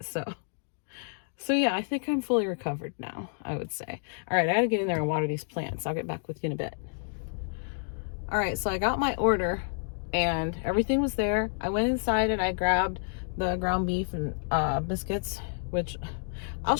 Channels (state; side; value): silent; right; digital silence